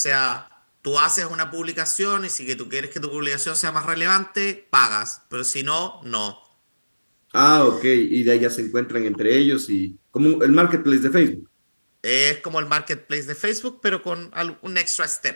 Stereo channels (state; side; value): inverted; both; correlation -1.00